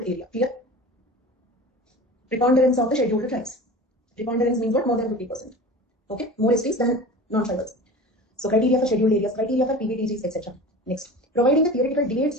area. Clear? Preponderance of the scheduled tribes. Preponderance means what? More than 50%. Okay? More STs than non-tribals. So criteria for scheduled areas, criteria for PBTGs, etc. Next, providing the theoretical debates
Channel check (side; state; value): both; normal; correlation 0.36